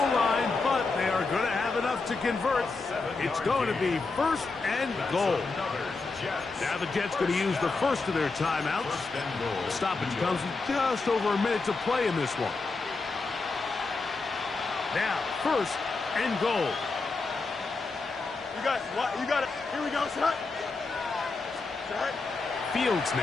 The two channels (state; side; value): quieter; right; 3.9 dB